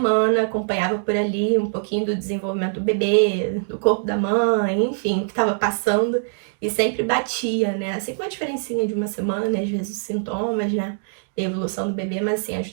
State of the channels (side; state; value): left; silent; 64 dB below the other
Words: acompanhava por ali um pouquinho do desenvolvimento do bebê, do corpo da mãe, enfim, o que estava passando. E sempre batia, né? Assim, com uma diferencinha de uma semana, às vezes os sintomas, né? E a evolução do bebê, mas assim,